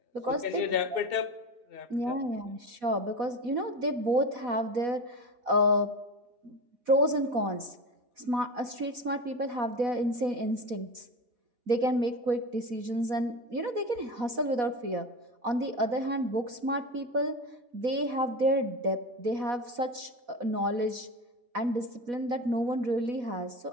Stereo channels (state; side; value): late; left; 4.1 ms